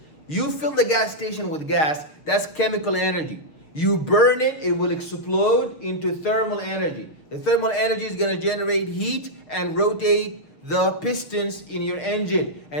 You fill the gas station with gas, that's chemical energy. You burn it, it will explode into thermal energy. The thermal energy is going to generate heat and rotate the pistons in your engine.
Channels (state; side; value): late; right; 6.5 ms